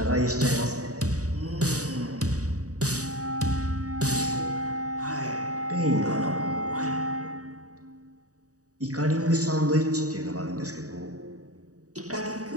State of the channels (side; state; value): left; late; 0.66 ms